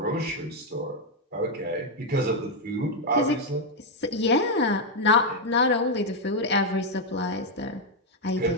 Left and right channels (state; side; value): normal; both; correlation 0.02